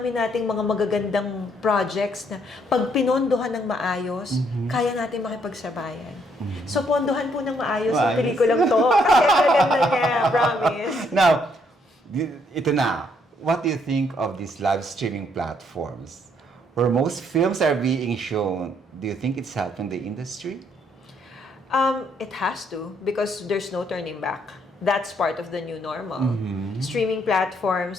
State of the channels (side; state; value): both; normal; correlation 0.70